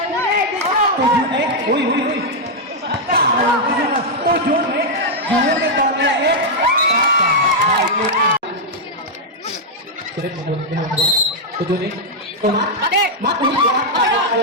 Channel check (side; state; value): both; normal; correlation -0.03